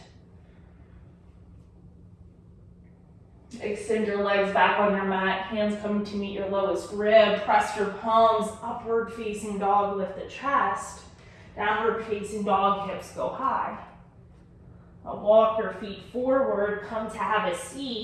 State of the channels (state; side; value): identical; both; correlation 1.00